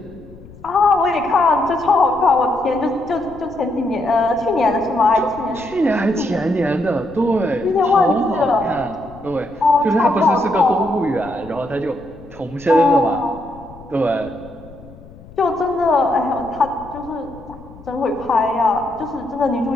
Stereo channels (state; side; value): noise; left; rumble, 20 dB below the sound